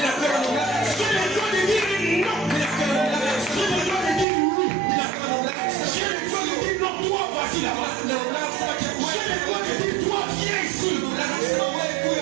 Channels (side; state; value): left; drops out; at 4.2 s